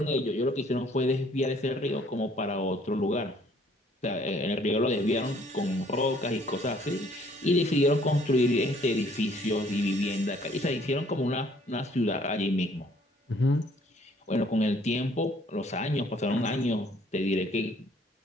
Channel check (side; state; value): both; normal; correlation 0.61